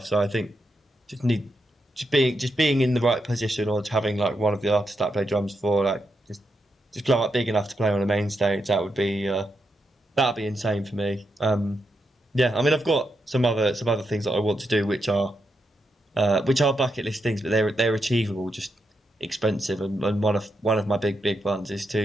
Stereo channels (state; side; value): normal; both; correlation 0.84